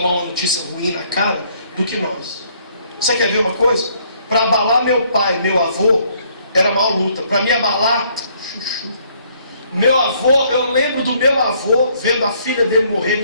uma notícia ruim na cara do que nós. Você quer ver uma coisa? Para abalar meu pai e meu avô, era mal luta. Para me abalar, chuchu. Meu avô, eu lembro do meu avô vendo a filha dele morrer,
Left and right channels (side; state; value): both; inverted; correlation -0.65